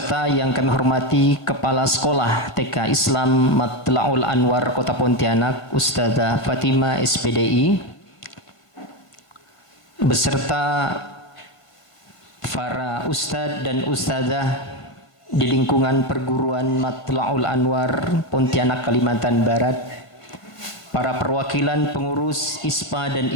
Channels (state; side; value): late; right; 1.6 ms